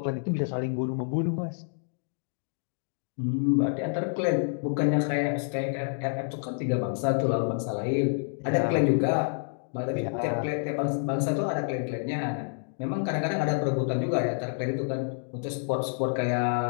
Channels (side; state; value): right; silent; digital silence